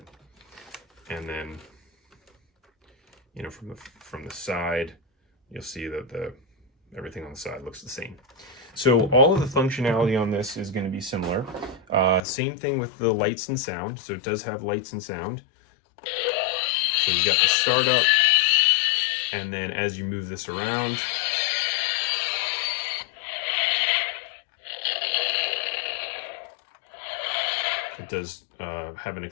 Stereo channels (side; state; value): right; drops out; at 12.2 s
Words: And then, you know, from the side, you'll see that everything on the side looks the same. So all of the functionality on this is going to be similar. Same thing with the lights and sound. So it does have lights and sound. So you got the startup, and then as you move this around, it does have an